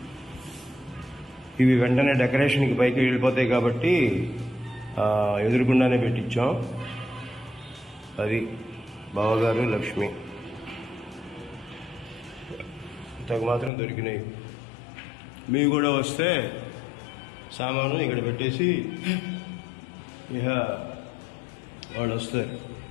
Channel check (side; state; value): right; drops out; at 13.7 s